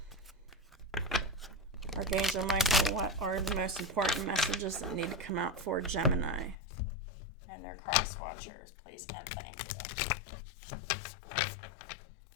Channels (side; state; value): right; drops out; at 6.6 s